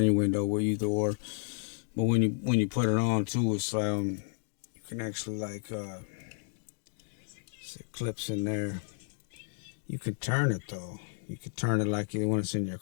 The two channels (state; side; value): silent; right; 56 dB below the other